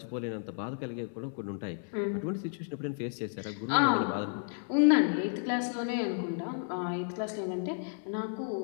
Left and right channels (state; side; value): silent; right; 56 dB below the other